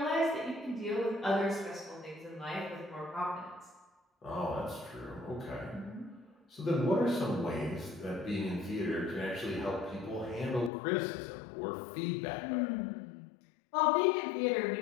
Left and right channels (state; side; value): drops out; right; at 10.7 s